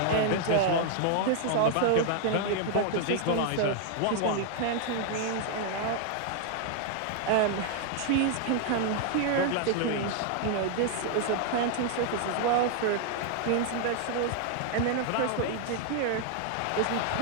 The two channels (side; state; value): both; different; correlation 0.00